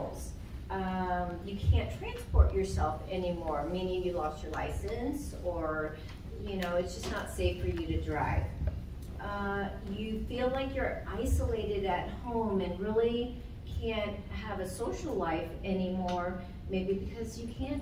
You can't transport yourself anymore, meaning you lost your license, or it's just not safe for you to drive. You feel like you're isolated at home and really can't have a social life anymore, maybe because you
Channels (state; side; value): identical; both; correlation 1.00